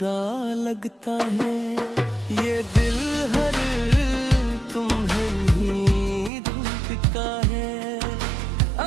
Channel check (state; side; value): drops out; left; at 6.3 s